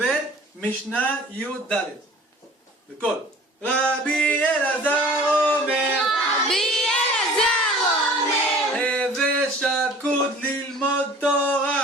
משנה י' ד'. בקול. רבי אלעזר אומר, הווה שקוד ללמוד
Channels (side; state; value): both; normal; correlation 0.47